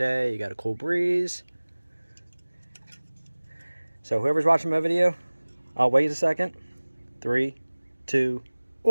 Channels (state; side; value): inverted; both; correlation -1.00